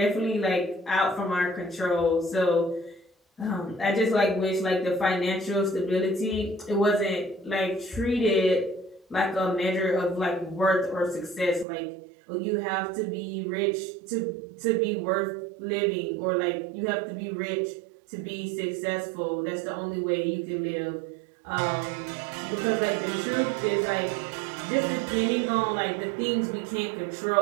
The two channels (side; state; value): left; drops out; at 11.7 s